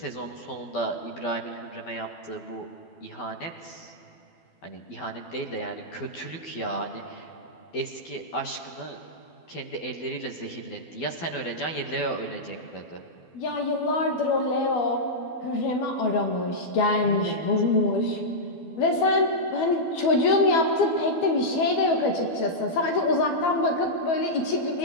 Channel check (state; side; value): late; right; 12 ms